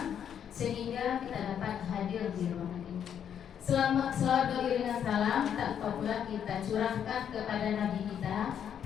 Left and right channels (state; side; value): quieter; right; 8.8 dB